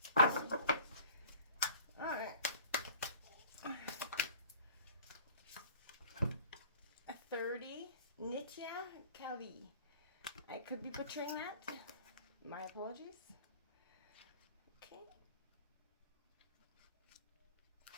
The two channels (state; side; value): inverted; both; correlation -0.47